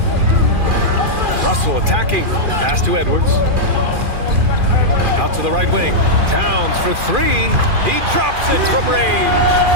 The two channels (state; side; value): late; left; 2.4 ms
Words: Russell attacking. Pass to Edwards. Out to the right wing. Towns for three. He drops it from range.